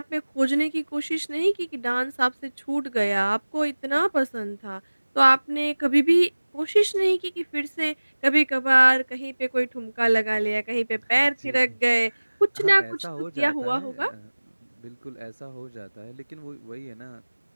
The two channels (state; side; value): inverted; both; correlation -1.00